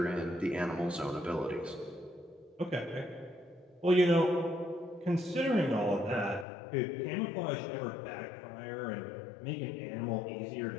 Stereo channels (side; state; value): right; drops out; at 6.5 s